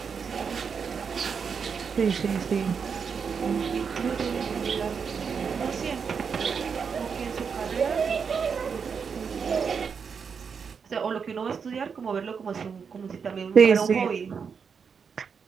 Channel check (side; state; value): left; quieter; 6.2 dB